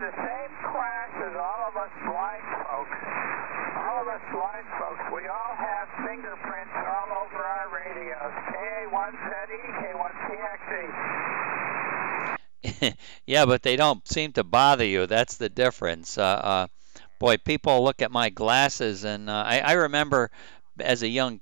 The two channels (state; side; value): silent; left; digital silence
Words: same class as all of us blind folks. All of us blind folks, we all have fingerprints all over our radios. KA1ZE, K1TXT. Yeah, but they don't seem to bother you. That's the difference. Boy, people look at my glasses, and I remember as a young